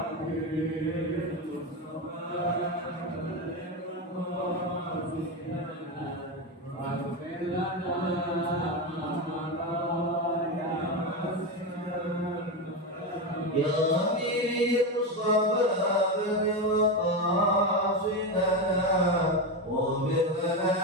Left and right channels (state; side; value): normal; both; correlation 0.14